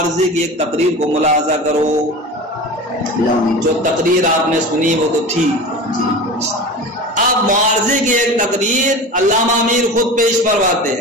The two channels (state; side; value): normal; both; correlation 0.32